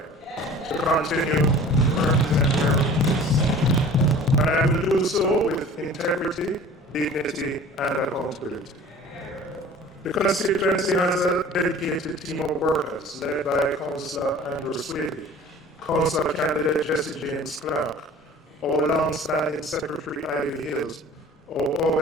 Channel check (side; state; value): both; normal; correlation 0.44